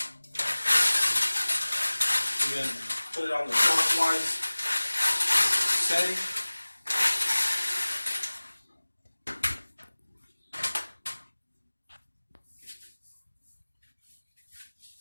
And then put it on the clockwise setting.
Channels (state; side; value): inverted; both; correlation -1.00